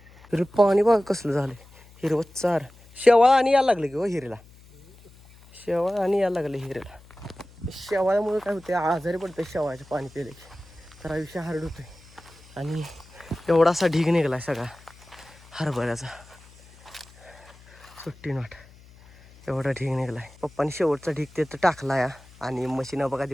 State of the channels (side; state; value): left; noise; hum, 24 dB below the sound